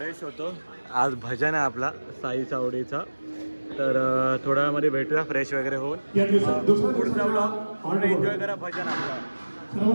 होतो. आज भजन आहे आपला साई चावडीचा. तर थोड्या वेळामध्ये भेटूया फ्रेश वगैरे होऊन. या दिवसात दुसऱ्या पुढचा ब्लॉग हॉल्ट एन्जॉय करा भजन आपला.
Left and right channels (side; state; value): both; inverted; correlation -1.00